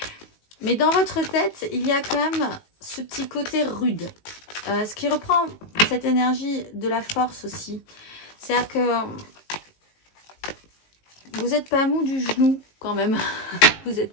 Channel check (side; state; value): right; late; 19 ms